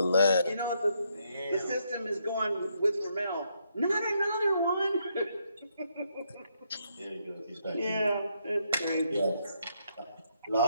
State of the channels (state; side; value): inverted; both; correlation -0.76